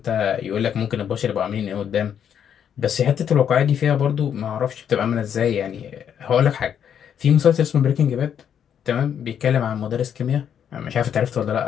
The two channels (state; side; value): quieter; right; 8.6 dB